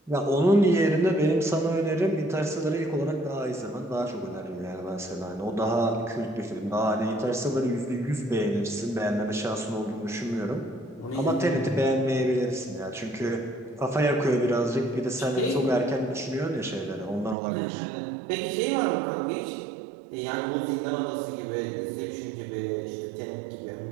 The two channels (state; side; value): drops out; left; at 17.4 s